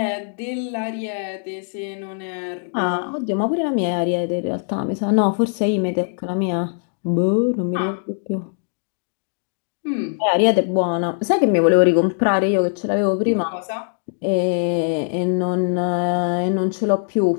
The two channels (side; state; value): right; silent; digital silence